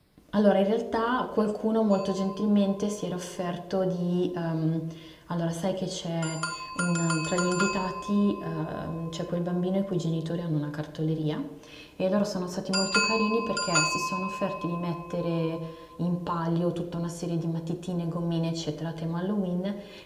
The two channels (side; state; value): both; identical; correlation 1.00